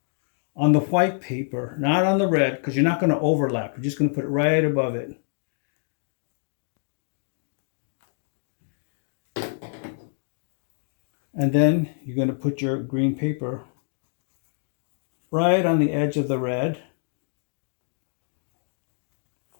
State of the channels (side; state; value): right; silent; digital silence